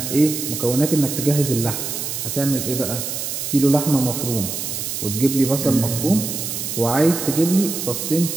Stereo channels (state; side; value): noise; right; hiss, 4 dB below the sound